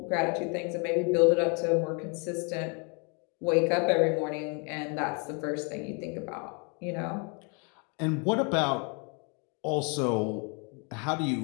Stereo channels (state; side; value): quieter; right; 35.0 dB